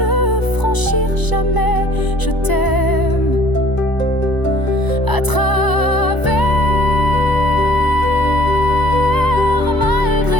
franchir jamais, je t'aime à travers,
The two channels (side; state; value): right; late; 1.0 ms